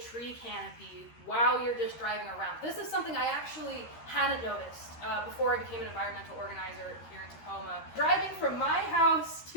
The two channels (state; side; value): late; right; 13 ms